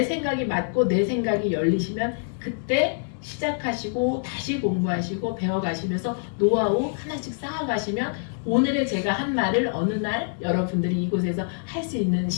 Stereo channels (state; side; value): silent; right; digital silence